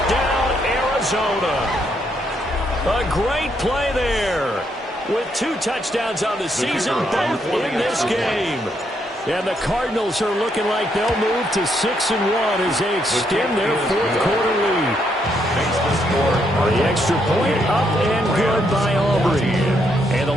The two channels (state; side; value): normal; both; correlation 0.75